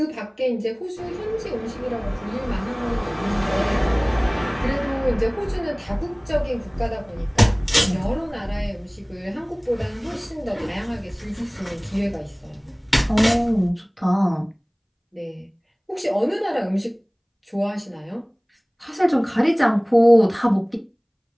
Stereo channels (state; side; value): identical; both; correlation 1.00